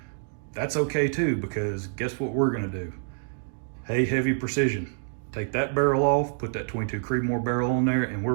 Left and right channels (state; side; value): silent; left; digital silence